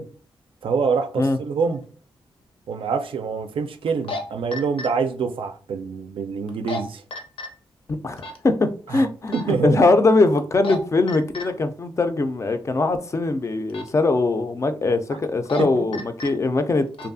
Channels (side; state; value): both; normal; correlation 0.77